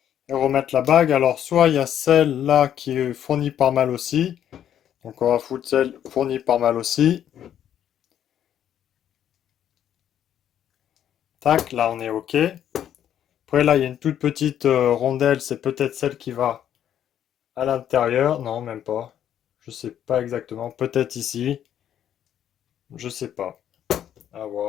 et remettre la bague. Alors, soit il y a celle-là qui est fournie par mal aussi. Donc, on va foutre celle fournie par mal aussi. Tac, là, on est ok. Après, là, il y a une toute petite rondelle. C'est peut-être celle qui va à l'intérieur. Non, même pas. Je sais pas exactement. Peut-être ici. Je sais pas. À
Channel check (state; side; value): quieter; right; 10.2 dB